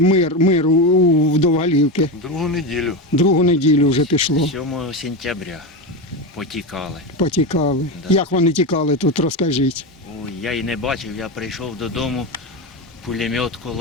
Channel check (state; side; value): normal; both; correlation 0.16